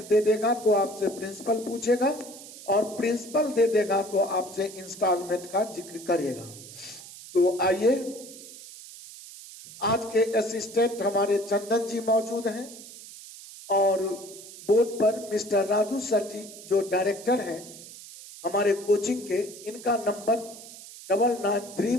दे देगा तो आपसे प्रिंसिपल पूछेगा और प्रिंसिपल दे देगा तो आपसे इंस्टॉलमेंट का जिक्र करेगा। तो आइए, आज के असिस्टेंट हमारे चंदन जी मौजूद हैं और बोर्ड पर मिस्टर राजू सर जी जो डायरेक्टर हैं हमारे कोचिंग के, इनका नंबर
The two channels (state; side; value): noise; right; hiss, 16 dB below the sound